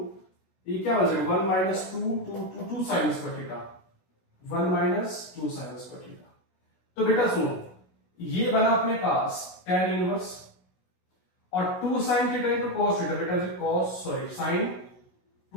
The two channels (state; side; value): late; right; 16 ms